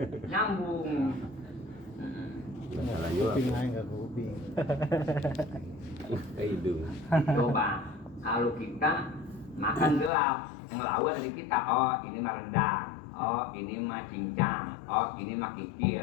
Masalah juga. Kuping aja nggak kuping. Ke hidung. Coba kalau kita makan gelap, ngelawan dari kita, oh ini mah rendang, oh ini mah cincang, oh ini mah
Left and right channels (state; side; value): drops out; right; at 10.1 s